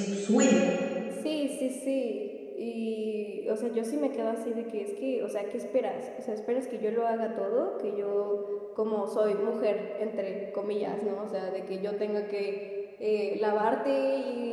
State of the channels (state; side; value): identical; both; correlation 1.00